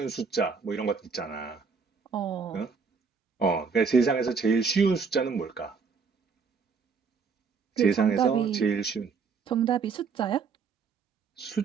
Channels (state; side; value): quieter; left; 5.3 dB